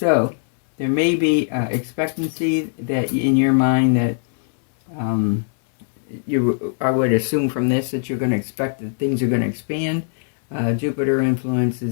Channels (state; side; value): silent; right; 65 dB below the other